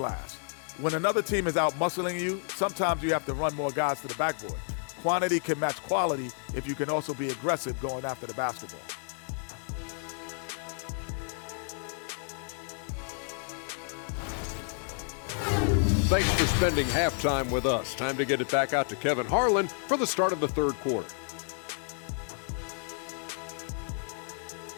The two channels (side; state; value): right; silent; 55 dB below the other